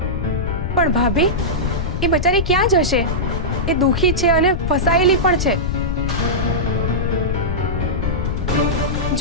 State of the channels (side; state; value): left; noise; rumble, 1 dB below the sound